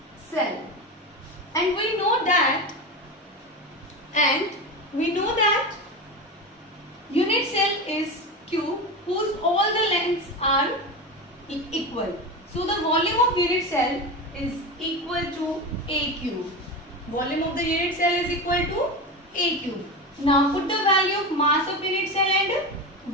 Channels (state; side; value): normal; both; correlation 0.22